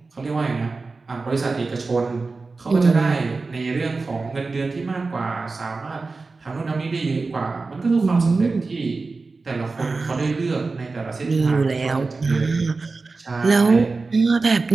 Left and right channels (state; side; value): quieter; left; 3.9 dB